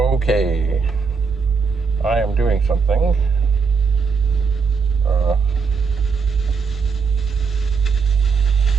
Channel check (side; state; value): left; quieter; 5.2 dB